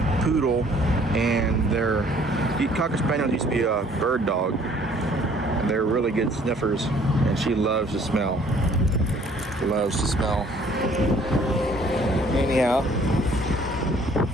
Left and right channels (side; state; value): both; normal; correlation 0.58